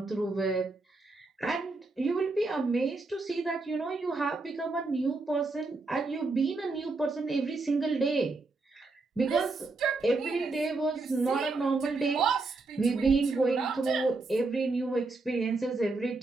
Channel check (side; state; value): left; quieter; 3.5 dB